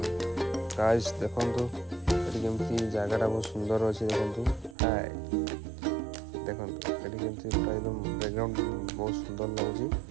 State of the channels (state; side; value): drops out; left; at 4.8 s